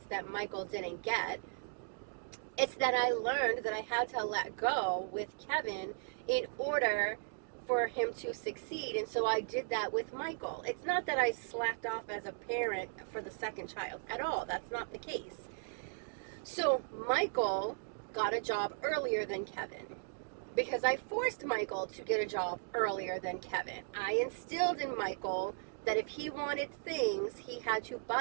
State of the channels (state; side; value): silent; left; digital silence